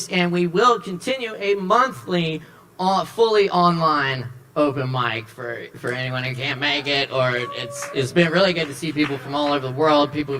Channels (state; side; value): identical; both; correlation 1.00